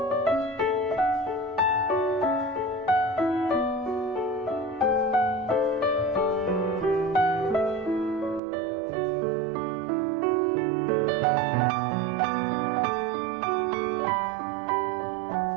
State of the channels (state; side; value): drops out; left; at 8.4 s